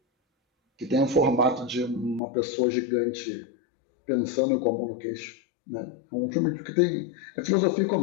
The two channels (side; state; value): right; drops out; at 2.2 s